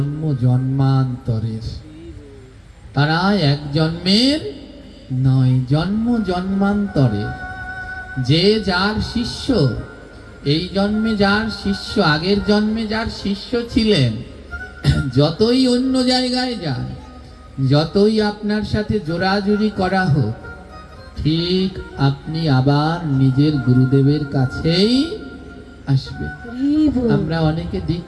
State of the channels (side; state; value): both; identical; correlation 1.00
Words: জন্মান্তরের। তারা এক জন্মের নয়, জন্ম জন্মান্তরে। যে যার শিষ্য, এই জন্মে যার শিষ্য, আগের জন্মে যার শিষ্য ছিলেন, যতই অন্য জায়গায় যান, যতই আপনার সাথে জোরাজুরি করা হোক, ঠিক আপনি আবার নিজের গুরুদেবের কাছেই আসবেন। আমরা অনেকে